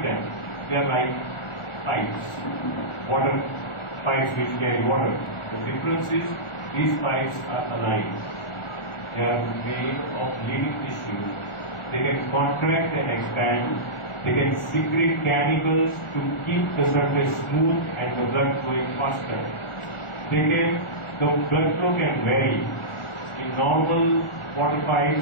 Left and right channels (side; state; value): right; late; 1.4 ms